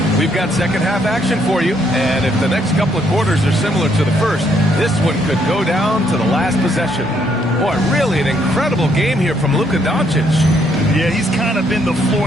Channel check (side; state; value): both; normal; correlation 0.71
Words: We've got second half action for you, and if the next couple of quarters are similar to the first, this one could go down to the last possession. Boy, really an incredible game here from Luka Doncic. Yeah, he's kind of been the